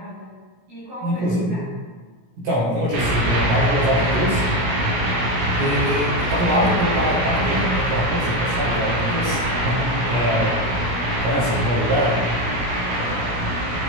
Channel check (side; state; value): left; late; 17 ms